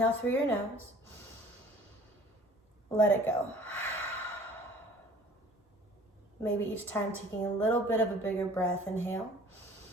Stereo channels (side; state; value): both; normal; correlation 0.50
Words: through your nose. Let it go. Maybe each time taking a little bit of a bigger breath. Inhale.